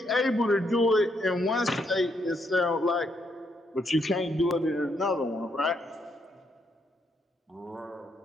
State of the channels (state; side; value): normal; both; correlation 0.76